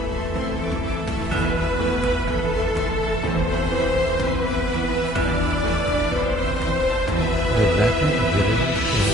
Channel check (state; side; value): normal; both; correlation 0.57